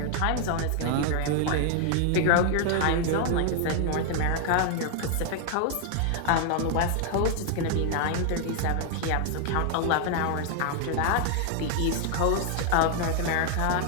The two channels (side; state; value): both; different; correlation 0.00